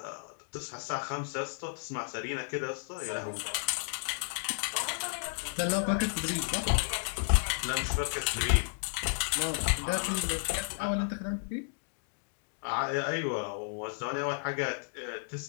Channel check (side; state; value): right; silent; digital silence